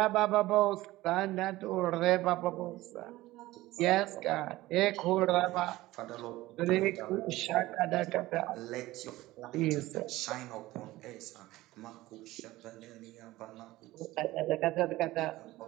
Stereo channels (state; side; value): quieter; left; 17.7 dB